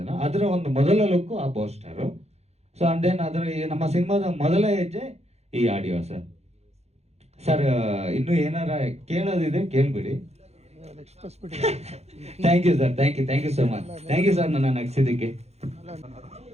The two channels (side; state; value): left; late; 0.31 ms